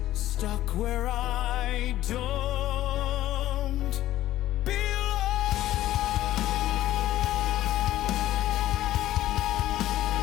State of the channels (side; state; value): right; quieter; 14.1 dB